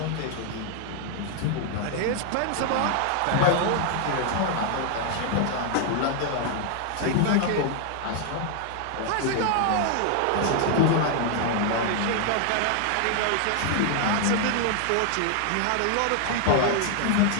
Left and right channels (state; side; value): different; both; correlation 0.00